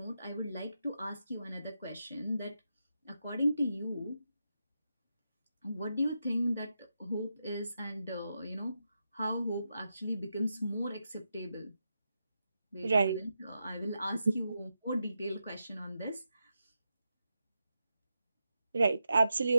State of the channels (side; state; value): both; inverted; correlation -0.87